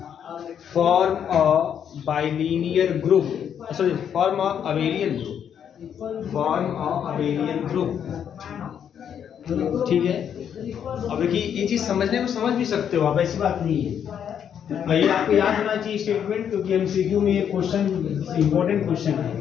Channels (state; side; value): quieter; right; 8.6 dB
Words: form a bilinear group, sorry form a abelian group, form a abelian group, ठीक है। अब देखिए ये चीज समझने में समझ भी सकते हो आप, ऐसी बात नहीं है। ये आपको याद होना चाहिए स्टेटमेंट, क्योंकि एमसीक्यू में ये क्वेश्चन इंपॉर्टेंट क्वेश्चन